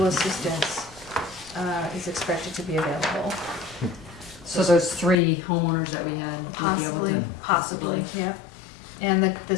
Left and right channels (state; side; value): drops out; right; at 5.2 s